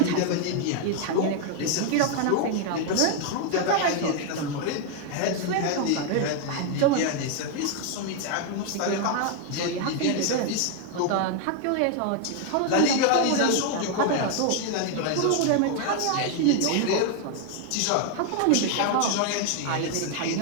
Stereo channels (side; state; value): both; different; correlation 0.01